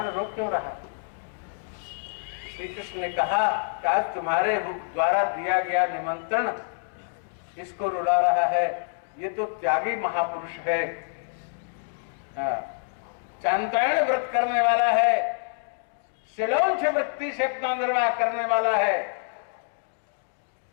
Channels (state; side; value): silent; right; digital silence